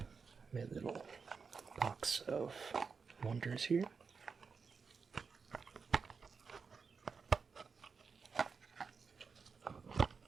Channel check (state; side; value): quieter; left; 5.3 dB